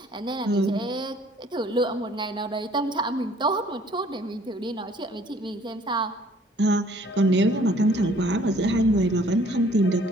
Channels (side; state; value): both; normal; correlation 0.57